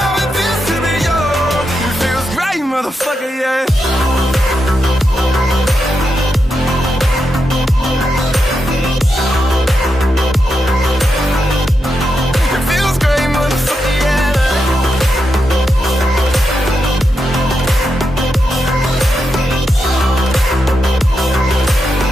it feels to be young? It feels great, motherfucker, yeah.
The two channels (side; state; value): both; normal; correlation 0.86